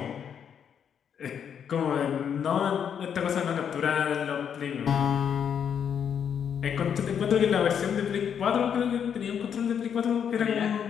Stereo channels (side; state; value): right; quieter; 8.0 dB